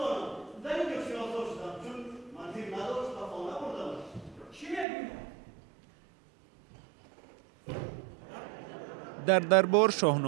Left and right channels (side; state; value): left; drops out; at 4.9 s